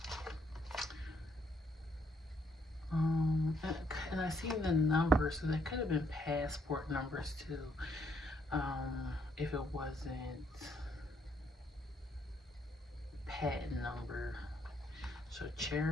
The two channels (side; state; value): both; normal; correlation 0.71